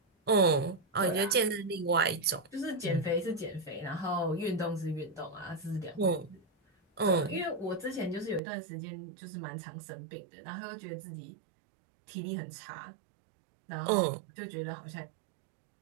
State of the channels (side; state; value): left; drops out; at 8.4 s